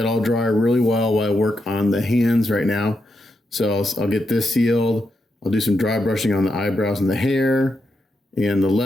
all dry really well while I work on the hands right now. So I'll get this sealed. I'll do some dry brushing on the eyebrows and the hair. and the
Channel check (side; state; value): both; normal; correlation 0.84